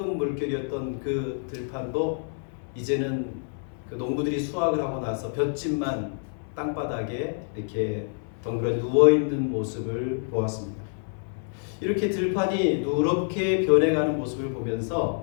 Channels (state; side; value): silent; right; 60 dB below the other